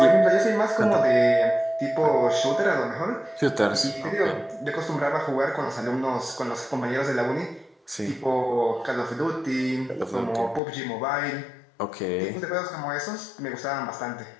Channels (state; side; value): drops out; right; at 10.6 s